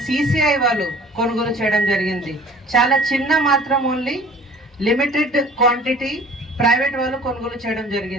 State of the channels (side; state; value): both; normal; correlation 0.48